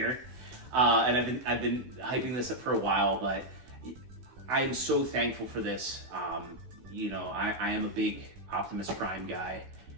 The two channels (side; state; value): left; late; 16 ms